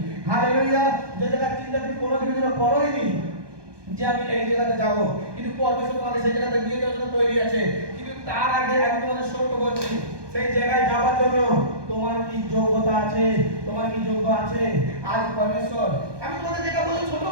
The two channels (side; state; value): left; late; 1.2 ms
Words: হালেলুয়া। যে জায়গার চিন্তা তুমি কোনো দিনের জন্য করোইনি যে আমি এই জায়গাতে যাব, কিন্তু পরমেশ্বর তোমাকে সেই জায়গাতে নিয়ে যাওয়ার জন্য তৈরি আছে। কিন্তু তার আগে আমি তোমাদের সত্য বলছি, সেই জায়গায় যাওয়ার জন্য তোমার কি যোগ্যতা আছে, তোমার কি যোগ্য আছে? আজ পরমেশ্বর, আমি তোমাদের যেটা বলছি ছোট